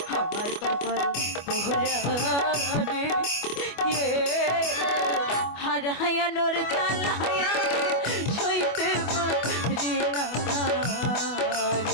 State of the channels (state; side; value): late; right; 25 ms